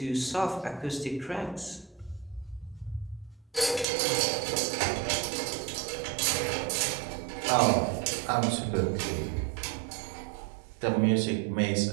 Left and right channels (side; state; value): left; drops out; at 3.9 s